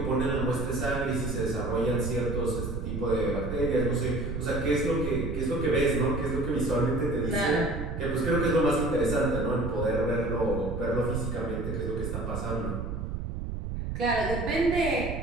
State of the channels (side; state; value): right; noise; rumble, 5 dB below the sound